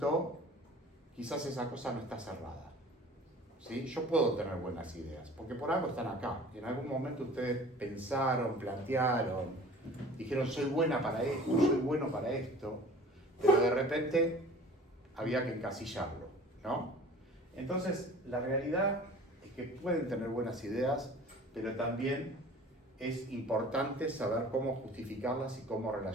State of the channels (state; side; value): normal; both; correlation 0.45